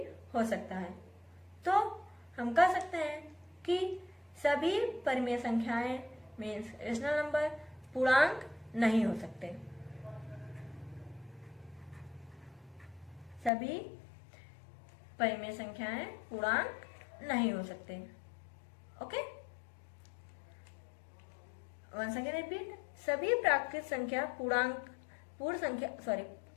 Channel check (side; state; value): right; drops out; at 13.5 s